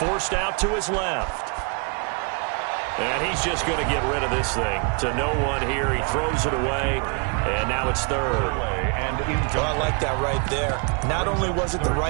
out to his left. And he's just going to get rid of this thing. To no one here. He throws it away. And now it's 3rd. And oh, I like that right there. Not only was it the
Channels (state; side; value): quieter; left; 35.4 dB